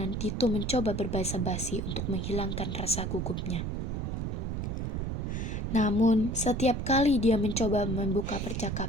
Dito mencoba berbasa-basi untuk menghilangkan rasa gugupnya. Namun, setiap kali dia mencoba membuka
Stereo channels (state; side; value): noise; right; rumble, 2 dB below the sound